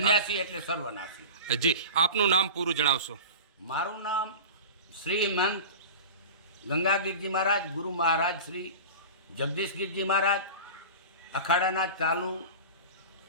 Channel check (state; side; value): inverted; both; correlation -0.33